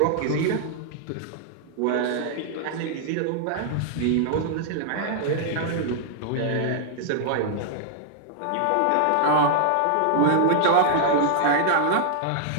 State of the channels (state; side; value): different; both; correlation -0.01